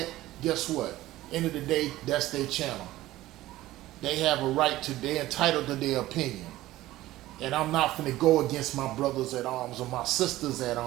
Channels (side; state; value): left; quieter; 16.1 dB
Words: Guess what? End of the day, that's their channel. They have a right to, they're entitled to their opinion. And I'm not finna go against my brothers at arms or my sisters at